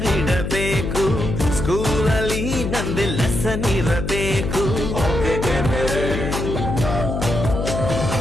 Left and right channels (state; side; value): noise; left; hum, 3 dB below the sound